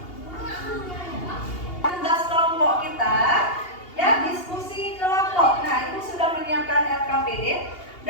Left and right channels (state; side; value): late; right; 2.8 ms